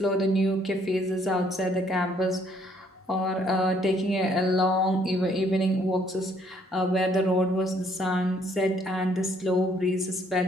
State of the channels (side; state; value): both; normal; correlation 0.66